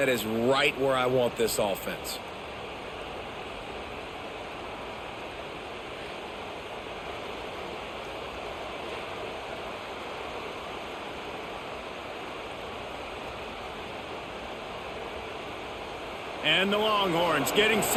is right where I want this offense. And the Longhorns getting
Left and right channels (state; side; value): identical; both; correlation 1.00